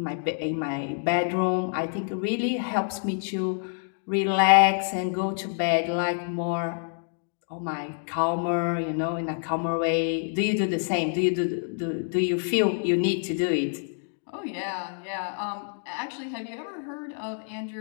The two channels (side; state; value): right; silent; 60 dB below the other